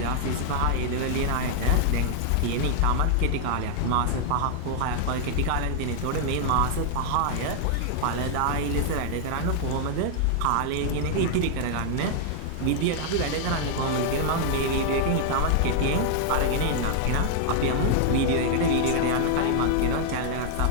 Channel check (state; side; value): different; both; correlation -0.01